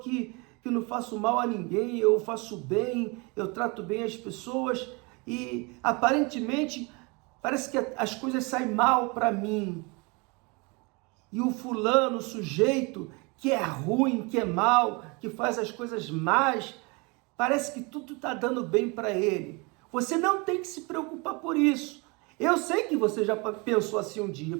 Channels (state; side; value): quieter; left; 28.8 dB